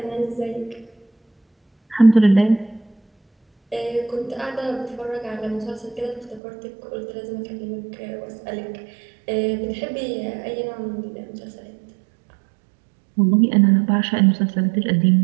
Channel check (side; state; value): left; drops out; at 6.4 s